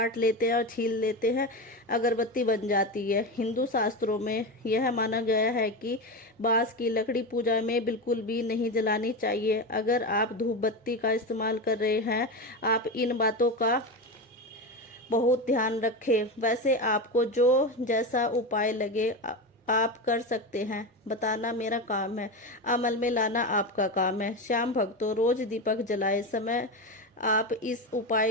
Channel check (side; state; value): both; normal; correlation 0.19